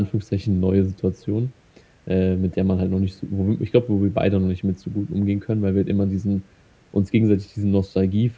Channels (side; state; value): both; identical; correlation 1.00